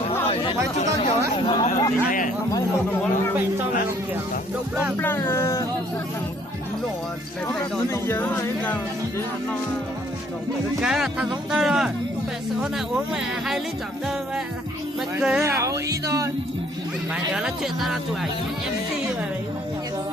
phải chúng ta kiểu đấy cái là thằng giống tơ rồi hôm nay uống mẹ 2 lít chọn tơ mẹ cười à ý thôi mày nhớ là chuyện ta là tuổi MC mà đấy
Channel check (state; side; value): normal; both; correlation 0.62